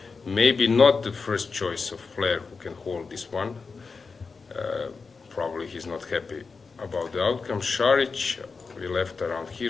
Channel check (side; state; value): right; quieter; 4.7 dB